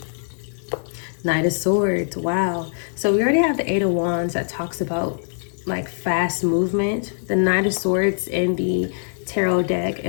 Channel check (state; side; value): silent; right; 62 dB below the other